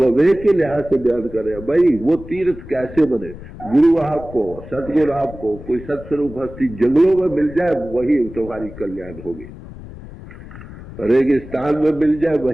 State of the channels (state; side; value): noise; left; rumble, 15 dB below the sound